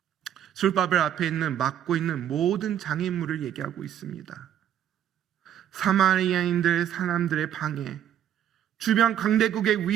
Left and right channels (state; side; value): quieter; left; 10.2 dB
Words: 스룹바벨 앞에 있는 막고 있는 모든 장애물을 얘기하고 있습니다. 사마리아인들 사람들의 방해, 주변 강대국의